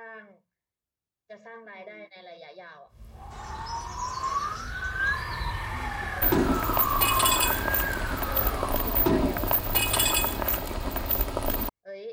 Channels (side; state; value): both; identical; correlation 1.00